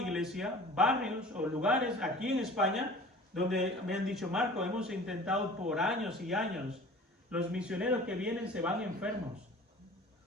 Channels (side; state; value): both; normal; correlation 0.43